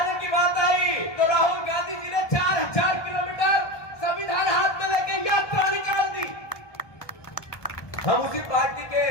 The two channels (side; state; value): right; late; 1.2 ms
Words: की बात आई तो राहुल गांधी जी ने 4000 किलोमीटर संविधान हाथ में लेके यात्रा निकाल दी। हम उसी पार्टी के